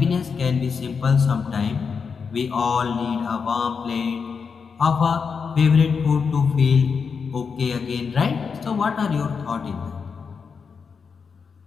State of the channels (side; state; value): right; quieter; 5.7 dB